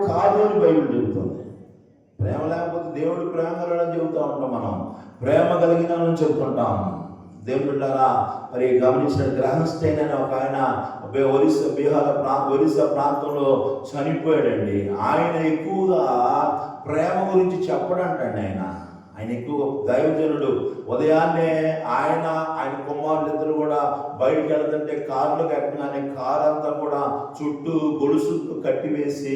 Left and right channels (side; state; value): both; identical; correlation 1.00